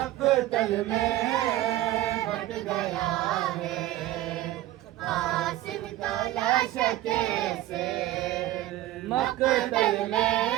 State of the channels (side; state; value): left; quieter; 14.9 dB